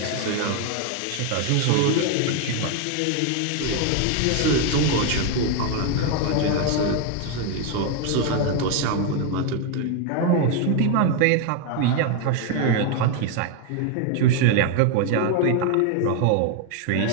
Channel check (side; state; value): both; different; correlation 0.01